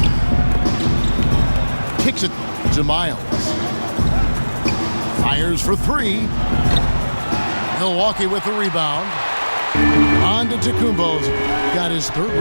Kicks it to Miles. Fires for 3. Milwaukee with the rebound. Antetokounmpo's got his 3rd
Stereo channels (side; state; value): both; inverted; correlation -1.00